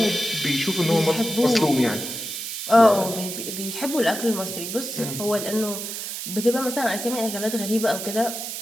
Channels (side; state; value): right; noise; hiss, 6 dB below the sound